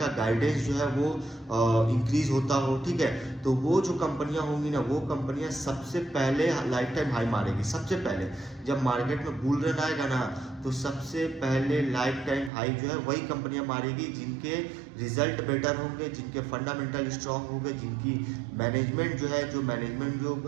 गाइडेंस जो है वो इंक्रीज होता हो, ठीक है। तो वो जो कंपनियां होंगी ना, वो कंपनियां सबसे पहले लाइफ टाइम हाई मारेगी। सबसे पहले जब मार्केट में बुल रन आएगा ना तो सबसे पहले लाइफ टाइम हाई जो है वही कंपनियां मारेगी जिनके रिजल्ट बेटर होंगे, जिनके फंडामेंटल स्ट्रांग होंगे, जिनकी मैनेजमेंट जो है, जो मैनेजमेंट जो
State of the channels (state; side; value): drops out; left; at 12.5 s